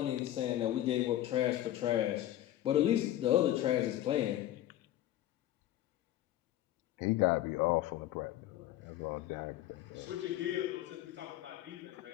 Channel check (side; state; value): right; quieter; 13.4 dB